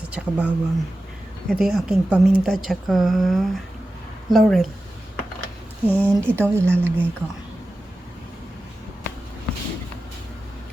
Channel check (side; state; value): both; normal; correlation 0.93